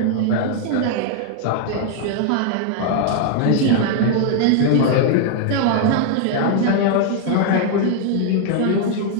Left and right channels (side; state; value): both; different; correlation 0.00